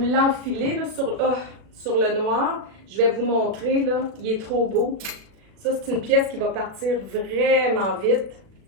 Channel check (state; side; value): late; left; 36 ms